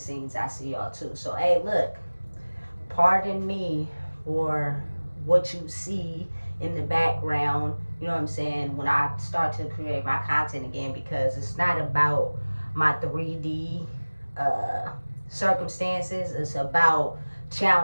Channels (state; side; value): inverted; both; correlation -1.00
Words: I see y'all too. So hey, look, pardon me for what you see in the background, you know what I'm saying, when I start to create my content again, because it's not about my 3D uh, circumstances. It's about